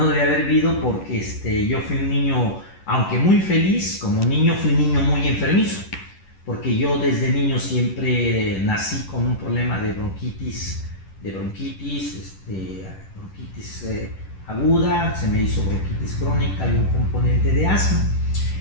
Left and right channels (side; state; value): right; late; 11 ms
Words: debía haber vivido porque yo fui un niño, aunque muy feliz, como niño fui un niño muy enfermizo, porque yo desde niño siempre nací con un problema de bronquitis aguda, se me hizo bronquitis crónica y un componente de asma.